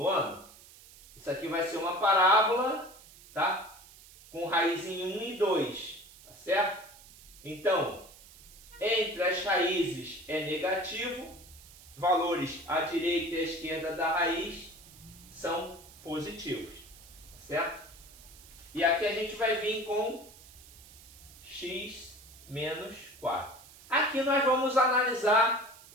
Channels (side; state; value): right; noise; hiss, 21 dB below the sound